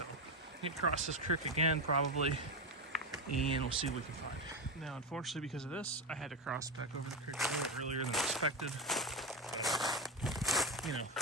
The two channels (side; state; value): both; normal; correlation 0.13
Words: we can cross this creek again, probably, and we'll see what we can find. Now, unfortunately, because of this, I had to cross back over the creek a little earlier than expected. You know,